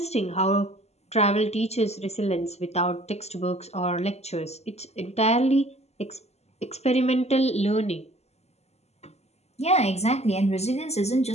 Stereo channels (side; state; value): right; late; 0.31 ms